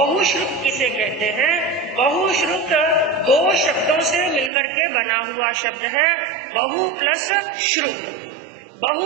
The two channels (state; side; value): drops out; left; at 4.5 s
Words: किसे कहते हैं। बहुश्रुत 2 शब्दों से मिलकर के बना हुआ शब्द है, बहु प्लस श्रुत।